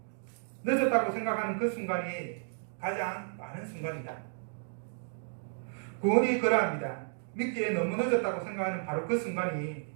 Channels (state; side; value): silent; left; digital silence